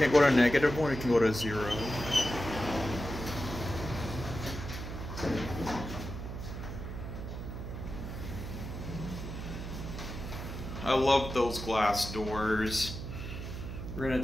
go to -1, it can go to 0. I love those glass doors. We're gonna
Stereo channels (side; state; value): right; noise; hum, 7 dB below the sound